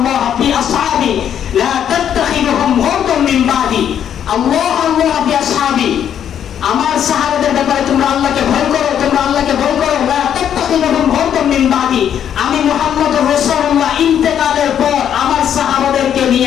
ফি আসহাবি লা তাত্তাখিযুহুম গুরদান মিন বাদি, আল্লাহ আল্লাহ ফি আসহাবি, আমার সাহাবাদের ব্যাপারে তোমরা আল্লাহকে ভয় করো, তোমরা আল্লাহকে ভয় করো, লা তাত্তাখিযুহুম গুরদান মিন বাদি, আমি মুহাম্মদুর রাসূলুল্লাহ ইন্তেকালের পর আমার সাহাবাদেরকে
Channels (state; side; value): quieter; right; 9.3 dB